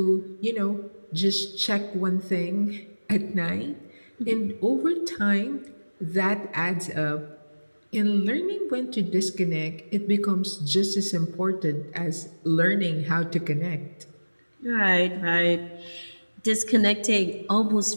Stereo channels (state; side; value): inverted; both; correlation -1.00